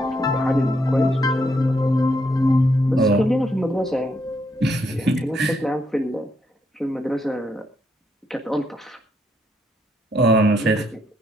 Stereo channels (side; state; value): both; normal; correlation 0.76